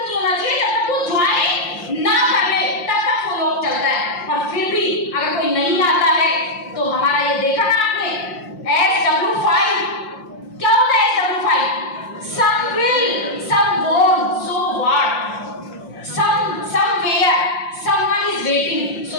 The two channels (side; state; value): right; late; 5.7 ms